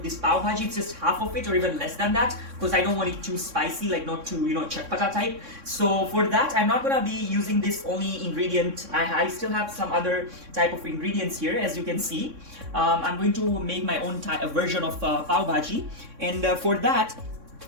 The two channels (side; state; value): left; late; 3.6 ms